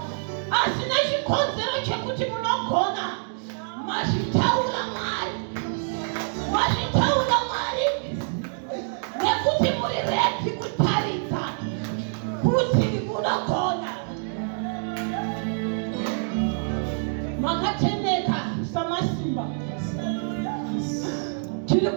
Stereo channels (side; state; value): left; silent; 60 dB below the other